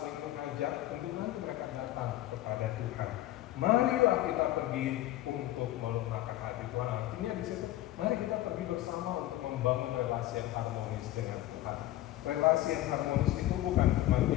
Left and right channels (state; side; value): quieter; right; 15.0 dB